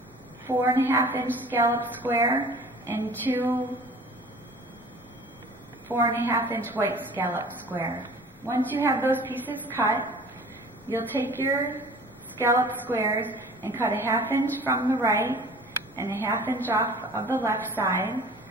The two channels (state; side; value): normal; both; correlation 0.45